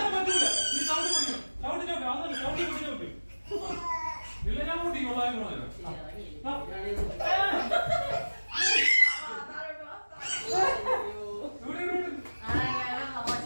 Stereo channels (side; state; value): both; inverted; correlation -1.00